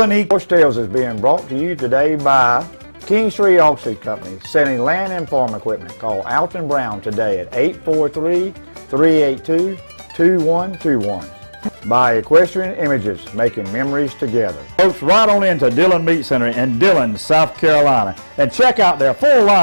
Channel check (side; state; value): both; inverted; correlation -1.00